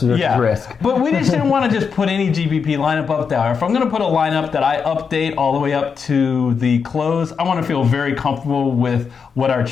versus risk. But we just didn't want to just put any GPP lineup up there. If I'm going to put a lineup that I update all the way up to the close, I want to feel very comfortable with what our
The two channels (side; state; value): right; quieter; 6.0 dB